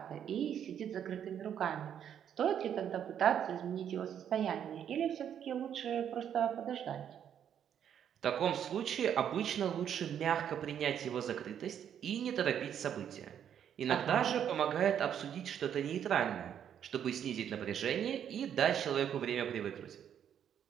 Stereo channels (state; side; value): quieter; left; 9.2 dB